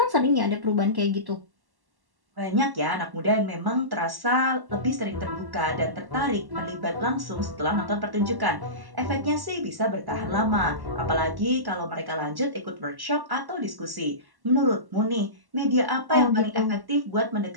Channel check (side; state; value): left; late; 1.1 ms